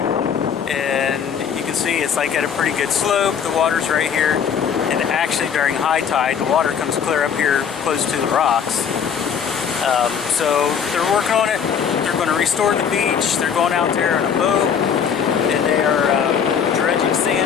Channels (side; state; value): right; quieter; 7.4 dB